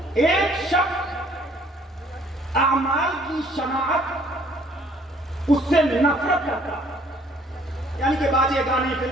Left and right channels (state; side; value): normal; both; correlation 0.60